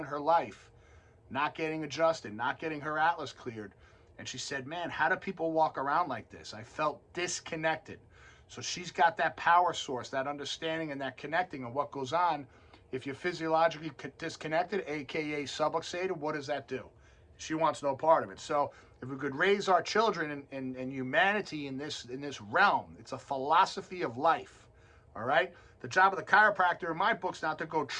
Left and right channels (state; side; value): identical; both; correlation 1.00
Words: her life, not getting adjusted, not getting her atlas cleared. And she said, man, how do people walk around like this? I felt disconnected. So she's got that power source, that understanding and that connecting of what goes on. If you're physiologically disconnected, aka subluxated, what does that do? She wants no part of it. So if we could raise our children in humanity in this realm, it's a philosophy of life. All right? The job of the chiropractor in my book's not to go